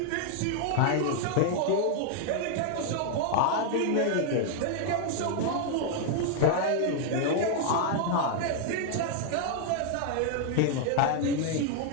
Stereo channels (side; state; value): both; different; correlation 0.00